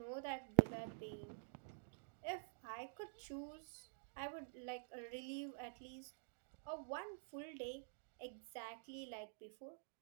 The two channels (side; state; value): left; silent; digital silence